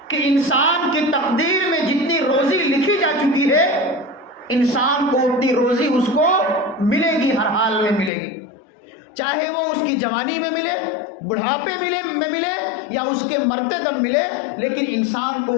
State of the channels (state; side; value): drops out; right; at 8.1 s